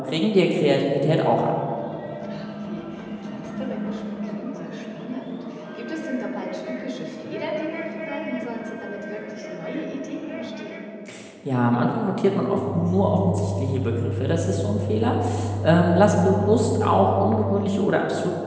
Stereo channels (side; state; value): both; identical; correlation 1.00